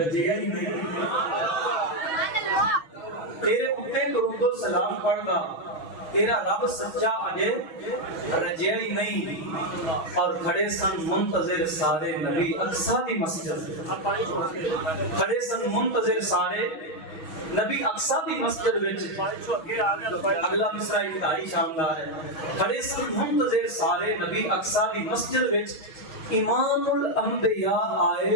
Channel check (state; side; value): late; right; 6.2 ms